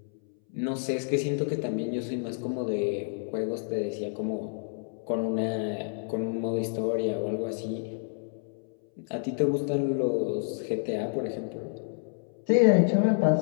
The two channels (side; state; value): right; silent; 59 dB below the other